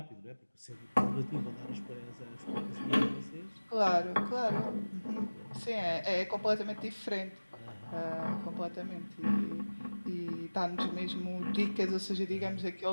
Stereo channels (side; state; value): both; inverted; correlation -1.00